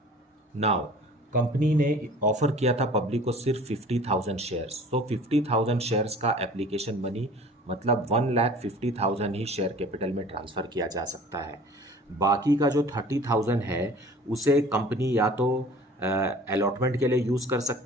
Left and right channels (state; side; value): normal; both; correlation 0.46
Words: Now company ने ऑफर किया था पब्लिक को सिर्फ 50,000 शेयर्स। तो 50,000 शेयर्स का एप्लीकेशन मनी मतलब 1,50,000 ही शेयर कैपिटल में ट्रांसफ़र किया जा सकता है। बाकी का जो 30,000 है उसे कंपनी या तो अलॉटमेंट के लिए यूज़ कर